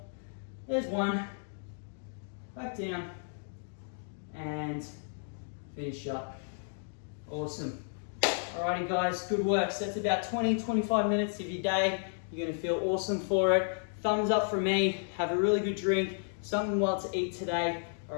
There's 1, back down, and finish up. Awesome. Alrighty guys, good work. So that's about 20-25 minutes of your day. You're gonna feel awesome for it. Thumbs up from me, have a really good drink, something well to eat today.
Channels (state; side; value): silent; right; digital silence